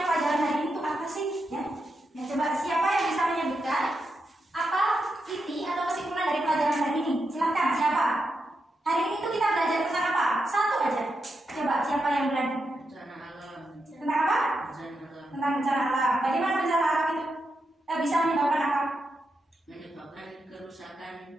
pelajaran hari ini itu apa sih? Ya, coba siapa yang bisa menyebutkan apa inti atau kesimpulan dari pelajaran hari ini? Silakan, siapa? Hari ini tuh kita belajar tentang apa? Satu aja. Coba siapa yang berani? bencana alam. Tentang apa? Bencana alam Tentang bencana alam. Bagaimana bencana alam itu bisa menyebabkan apa? menyebabkan kerusakan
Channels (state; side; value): normal; both; correlation 0.85